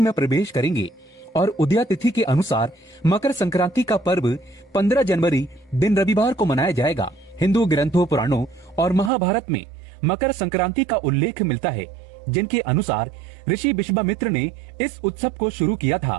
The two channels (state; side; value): drops out; left; at 9.1 s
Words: प्रवेश करेंगे और उदया तिथि के अनुसार मकर संक्रांति का पर्व 15 जनवरी दिन रविवार को मनाया जाएगा। हिंदू ग्रंथों, पुराणों और महाभारत में मकर संक्रांति का उल्लेख मिलता है, जिनके अनुसार ऋषि विश्वामित्र ने इस उत्सव को शुरू किया